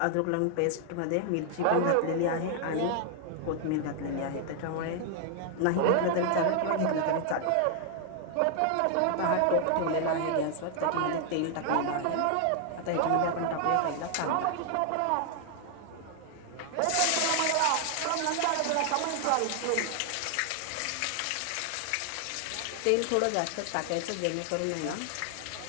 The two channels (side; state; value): both; different; correlation 0.00